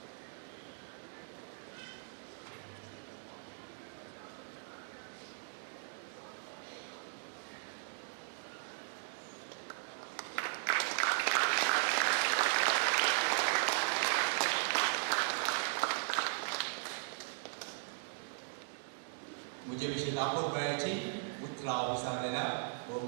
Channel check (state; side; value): silent; left; digital silence